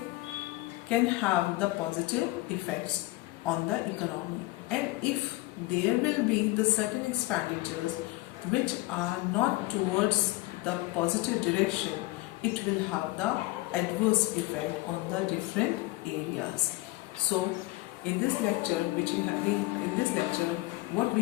can have the positive effects on the economy, and if there will be the certain expenditures which are not towards the positive direction, it will have the adverse effect on the different areas. So in this lecture what we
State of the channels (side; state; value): right; quieter; 21.2 dB